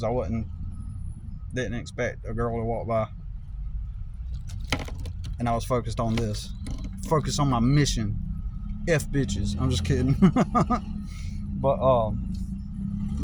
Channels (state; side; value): identical; both; correlation 1.00